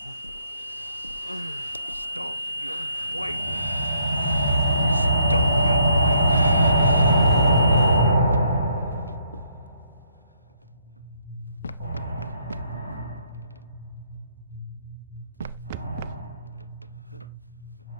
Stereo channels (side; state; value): both; inverted; correlation -0.69